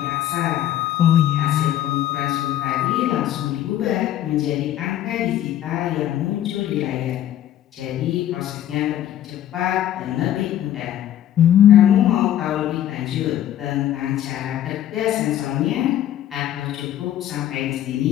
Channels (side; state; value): right; quieter; 11.8 dB